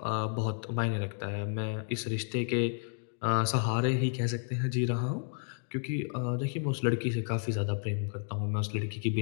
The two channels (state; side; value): silent; right; 57 dB below the other